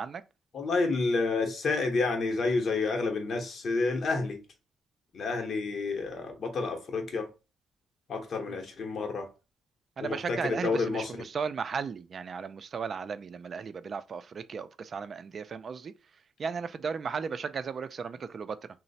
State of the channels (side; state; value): both; normal; correlation 0.80